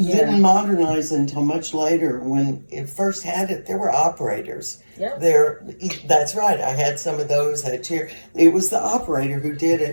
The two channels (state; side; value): inverted; both; correlation -1.00